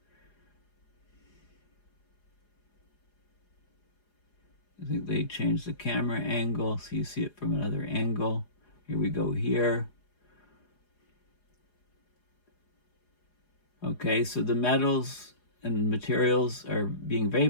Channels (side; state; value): right; late; 4.8 ms